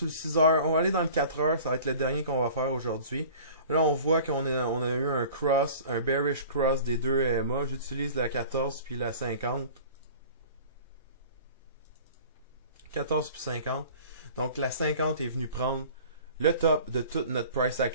le 6 heures, on va aller dans le 4 heures, ça va être le dernier qu'on va faire aujourd'hui. Là, on voit qu'on a eu un cross, un bearish cross des deux EMA. J'utilise la 14 puis la 50. 14 puis 50. Donc, la 50 est venue prendre le top de toute notre price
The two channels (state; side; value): inverted; both; correlation -0.44